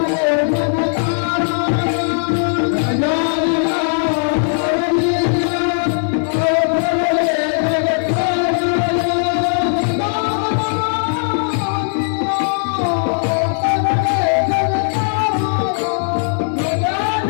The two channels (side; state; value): right; silent; digital silence